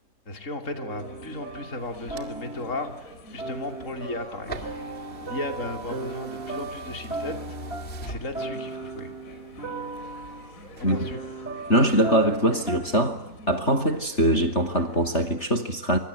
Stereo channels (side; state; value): right; late; 3.3 ms